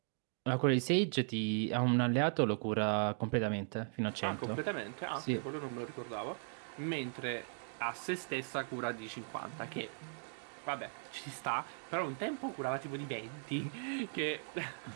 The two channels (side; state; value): left; silent; digital silence